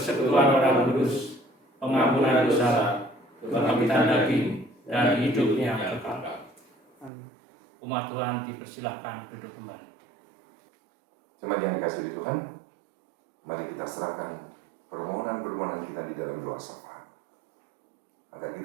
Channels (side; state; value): left; drops out; at 7.1 s